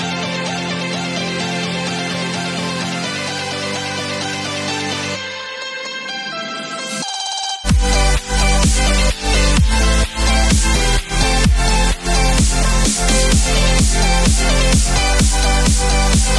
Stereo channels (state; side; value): identical; both; correlation 1.00